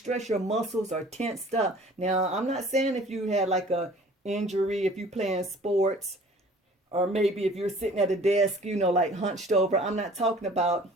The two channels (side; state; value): both; normal; correlation 0.49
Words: Your muscles are tensed up. Now, I'm not saying if you had like a injury, if you playing sports, or maybe if you're sitting at a desk, like hunched over. I'm not talking about